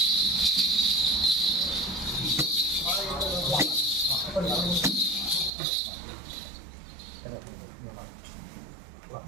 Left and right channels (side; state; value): left; drops out; at 5.5 s